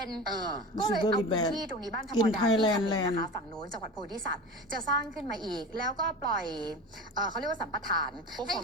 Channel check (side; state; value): both; normal; correlation 0.31